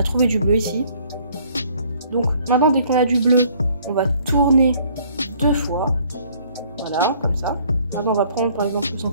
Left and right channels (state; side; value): inverted; both; correlation -0.59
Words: trouvé du bleu ici. Donc maintenant, dès qu'on a du bleu, on va tourner 2 fois. Voilà, comme ça. Maintenant, on va prendre par exemple le